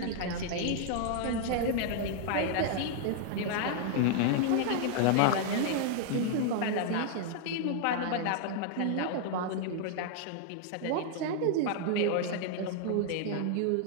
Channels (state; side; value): different; both; correlation 0.00